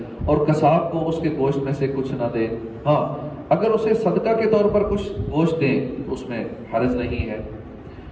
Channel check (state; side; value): identical; both; correlation 1.00